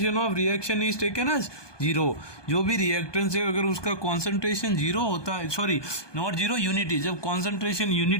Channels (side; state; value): right; late; 1.2 ms